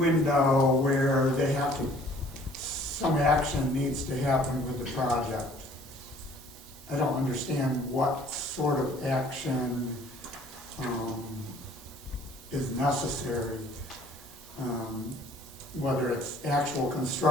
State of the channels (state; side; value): normal; both; correlation 0.55